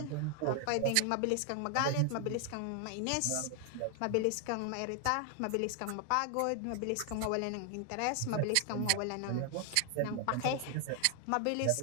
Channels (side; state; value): both; different; correlation 0.00